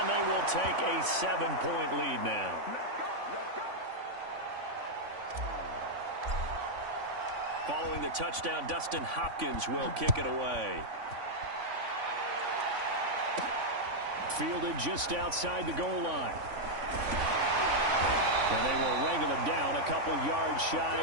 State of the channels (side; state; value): left; late; 3.5 ms